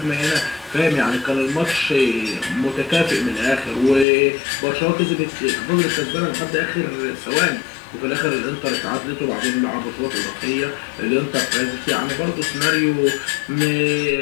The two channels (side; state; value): right; drops out; at 4.0 s